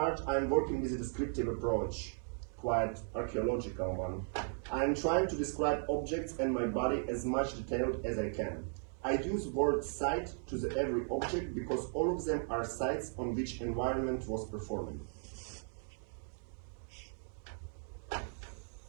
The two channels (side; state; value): left; silent; 53 dB below the other